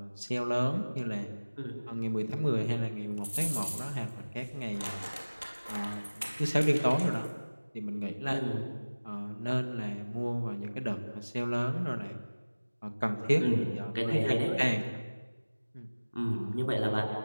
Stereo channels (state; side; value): inverted; both; correlation -1.00